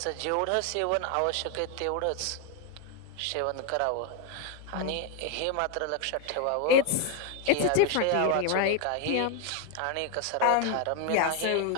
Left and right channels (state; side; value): different; both; correlation 0.01